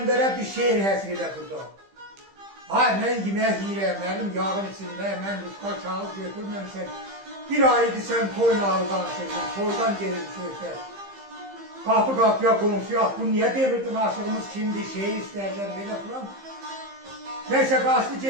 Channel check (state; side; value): late; left; 15 ms